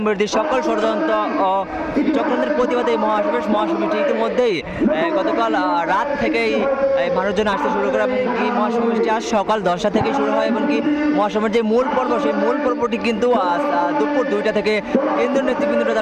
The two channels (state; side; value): identical; both; correlation 1.00